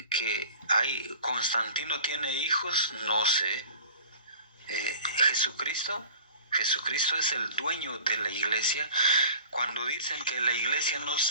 que Constantino tiene hijos, no sé. Jesucristo es el dueño de la iglesia. Cuando dicen que la iglesia no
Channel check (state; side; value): inverted; both; correlation -0.42